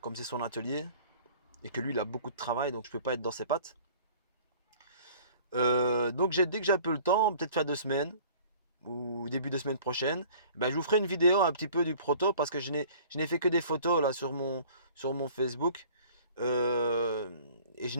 comme c'est son atelier et que lui il a beaucoup de travail donc je peux pas être dans ses pattes. Donc dès que j'ai un peu le temps, peut-être faire 2 semaines ou début de semaine prochaine, ben, je vous ferai une vidéo un petit peu du proto parce que je n'ai fait que des photos là sur mon Facebook. Euh, et je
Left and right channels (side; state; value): both; inverted; correlation -0.50